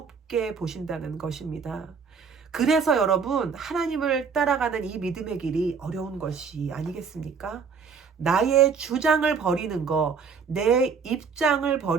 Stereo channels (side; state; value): left; quieter; 5.8 dB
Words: 보신다는 것입니다. 그래서 여러분 하나님을 따라가는 이 믿음의 길이 어려운 것이 아니겠습니까? 나의 주장을 버리는 거, 내 입장을